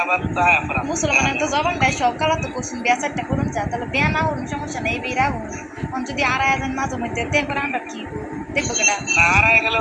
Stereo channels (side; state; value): both; identical; correlation 1.00